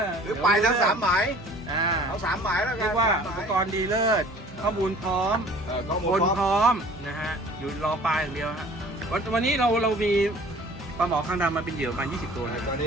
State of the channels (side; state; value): both; normal; correlation 0.49